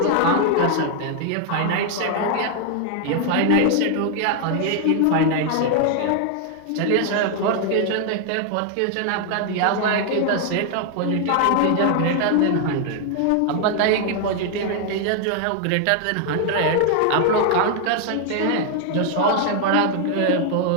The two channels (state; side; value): different; both; correlation 0.00